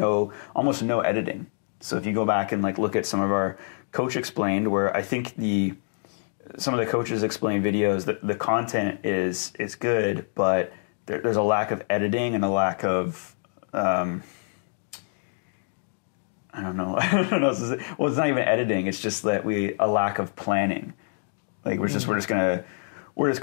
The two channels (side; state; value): right; silent; 61 dB below the other